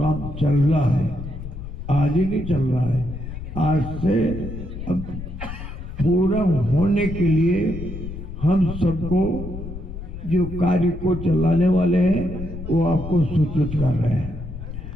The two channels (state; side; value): noise; left; rumble, 9 dB below the sound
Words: चल रहा है, आज ही नहीं चल रहा है। आज से अब पूरा होने के लिए हम सबको जो कार्य को चलाने वाले हैं वो आपको सूचित कर रहे हैं।